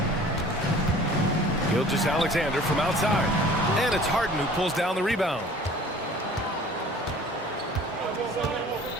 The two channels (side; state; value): both; normal; correlation 0.48